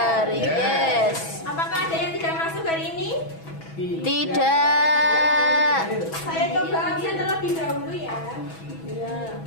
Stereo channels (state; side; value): late; right; 6.1 ms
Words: Yes. Apakah ada yang tidak masuk hari ini? Tidak. Saya coba absen terlebih dahulu ya.